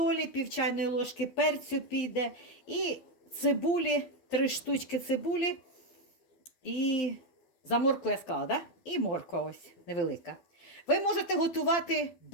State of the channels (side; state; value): right; late; 12 ms